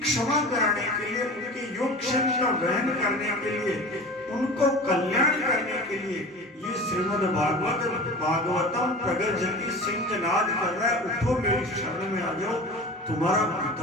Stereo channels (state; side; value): normal; both; correlation 0.35